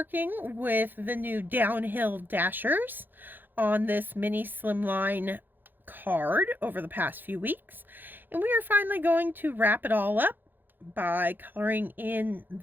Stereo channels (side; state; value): left; late; 0.091 ms